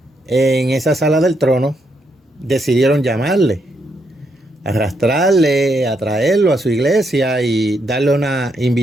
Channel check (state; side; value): normal; both; correlation 0.78